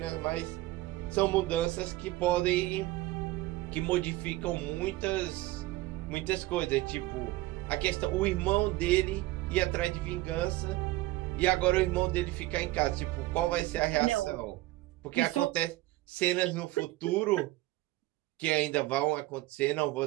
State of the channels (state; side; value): quieter; left; 18.1 dB